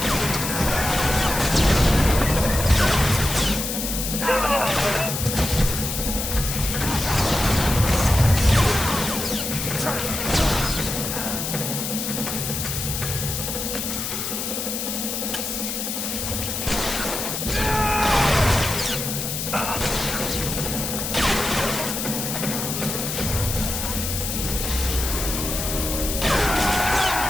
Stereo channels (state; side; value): noise; left; hiss, 3 dB below the sound